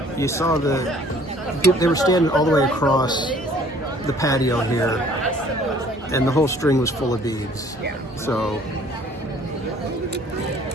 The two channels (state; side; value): normal; both; correlation 0.55